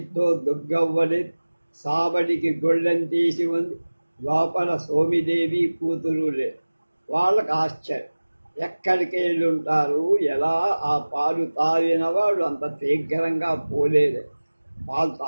దుర్గవ్వని సాబడికి గొళ్ళెం తీసి ఉంది. లోపల సోమిదేవి కూతురు లేదు. వాళ్ళకు ఆశ్చర్యం. ఎక్కడికి వెళ్ళి ఉంటారు? ఎలా ఆ పాలు తాగిన వాడు అంత శీఘ్రంగా పోలేదే, పాలు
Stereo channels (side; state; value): both; inverted; correlation -1.00